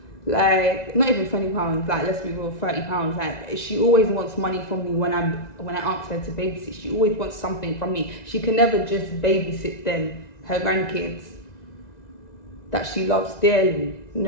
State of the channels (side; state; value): right; late; 1.9 ms